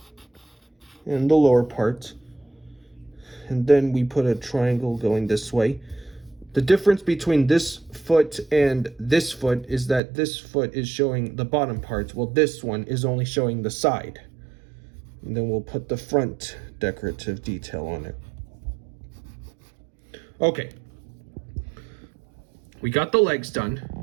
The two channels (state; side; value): drops out; left; at 10.0 s